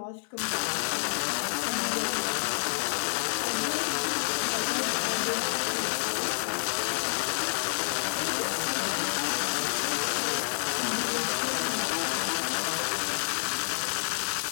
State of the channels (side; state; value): right; silent; digital silence